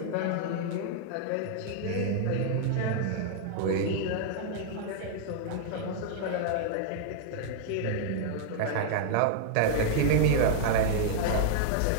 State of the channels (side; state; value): both; different; correlation -0.01